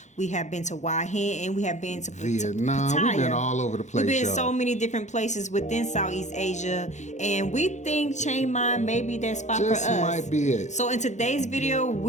we have been to Hua Hin, and we have been to Vietnam. Pattaya. We've been all over the place. We've been y'all. so many different places within Southeast Asia, and we think Chiang Mai may be that spot Just for us. might be it. So in today's video,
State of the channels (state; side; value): late; right; 0.34 ms